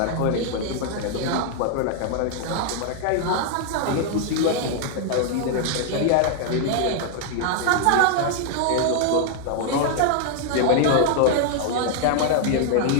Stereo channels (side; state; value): both; different; correlation 0.00